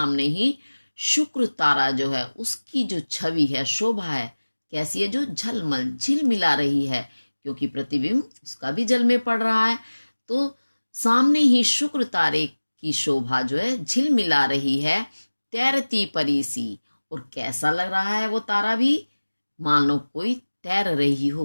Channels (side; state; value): both; inverted; correlation -1.00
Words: ही शुक्र तारा जो है उसकी जो छवि है, शोभा है, कैसी है? जो झलमल, झिलमिला रही है, क्योंकि प्रतिबिंब उसका भी जल में पड़ रहा है। तो सामने ही शुक्र तारे की शोभा जो है झिलमिला रही है, तैरती परी सी। और कैसा लग रहा है वो तारा भी? मानो कोई तैर रही हो